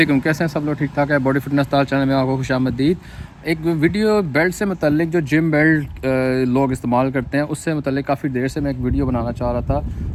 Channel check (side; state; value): both; identical; correlation 1.00